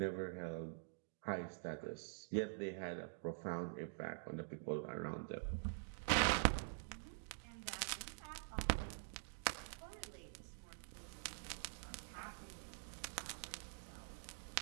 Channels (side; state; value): left; silent; digital silence